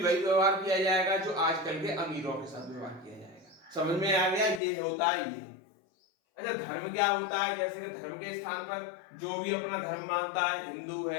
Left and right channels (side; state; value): right; drops out; at 4.6 s